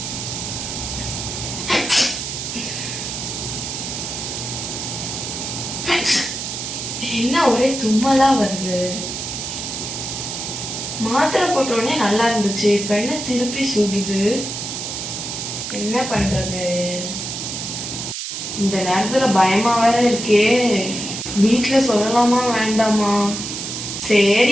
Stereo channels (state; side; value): noise; right; hiss, 5 dB below the sound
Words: என்ன ஒரே தும்மலா வருது. மாத்திரை போட்டோடனே நல்லா இருந்துச்சு, இப்ப என்ன திருப்பி சுடுது. என்ன பண்றது? இந்த நேரத்துல பயமா வேற இருக்கே. வீட்டுல சொல்லலாமா வேண்டாமா?